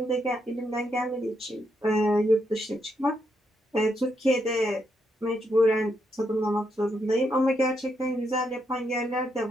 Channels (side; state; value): both; normal; correlation 0.79